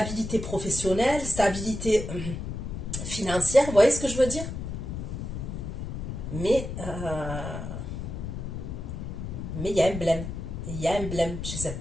professionnelle, stabilité financière, vous voyez ce que je veux dire? Mais il y a un blême. Il y a un blême chez cette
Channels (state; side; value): noise; left; rumble, 6 dB below the sound